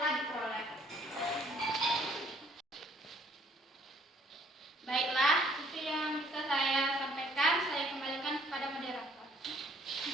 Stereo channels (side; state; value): both; normal; correlation 0.62